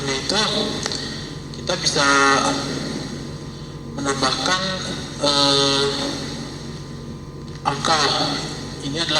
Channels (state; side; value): identical; both; correlation 1.00